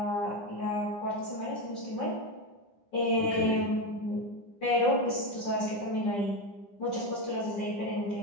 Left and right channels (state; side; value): late; right; 9.9 ms